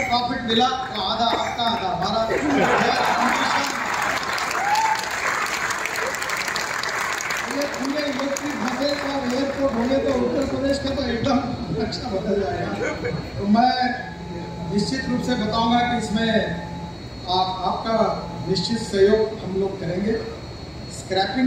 प्रॉफिट मिला तो आधा आपका, आधा हमारा। पूरे इलेक्ट्रिक बसेस और एयरपोर्ट होंगे तो उत्तर प्रदेश का तो एकदम नक्शा बदल जाएगा। तो मैं निश्चित रूप से बताऊंगा कि इसमें आपका निश्चित सहयोग हम लोग करेंगे स्क्रैपिंग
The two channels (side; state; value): both; identical; correlation 1.00